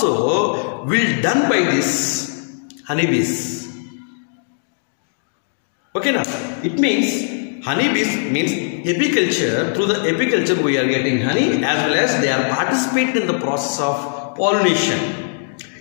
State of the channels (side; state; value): right; silent; digital silence